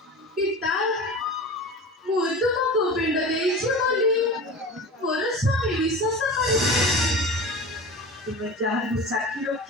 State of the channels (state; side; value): normal; both; correlation 0.33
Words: ପିତା, ମୁଁ ତୁମକୁ ପିଣ୍ଡ ଦେଇଛି ବୋଲି ମୋର ସ୍ୱାମୀ ବିଶ୍ୱାସ କରିଛି। ତୁମେ ଯାହାକୁ ସାକ୍ଷୀ